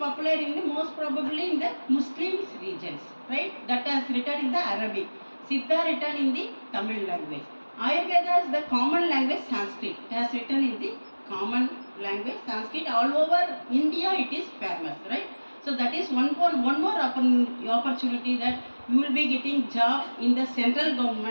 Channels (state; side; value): inverted; both; correlation -1.00